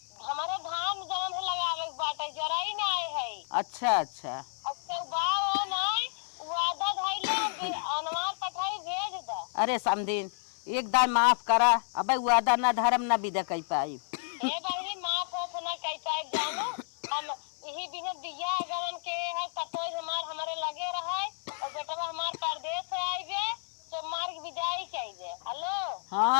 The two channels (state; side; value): silent; right; digital silence